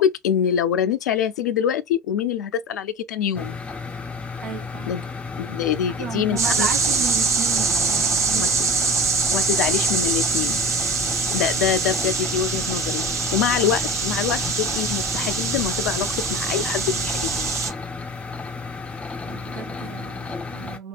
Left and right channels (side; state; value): both; normal; correlation 0.30